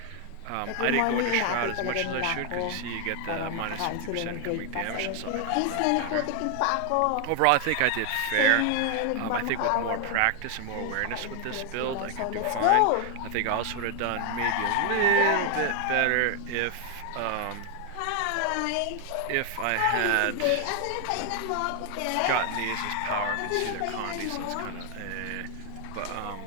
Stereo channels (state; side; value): different; both; correlation 0.00